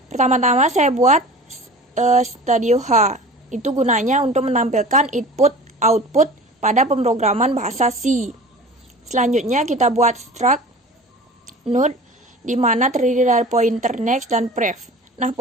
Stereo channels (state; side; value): normal; both; correlation 0.39